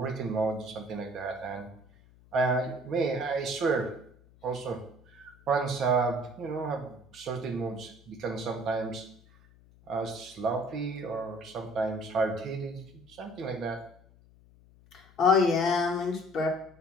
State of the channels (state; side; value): noise; left; hum, 26 dB below the sound